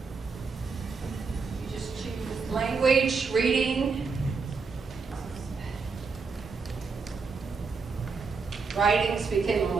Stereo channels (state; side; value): quieter; left; 4.8 dB